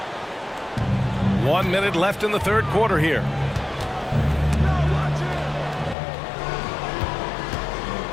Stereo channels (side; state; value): right; drops out; at 6.0 s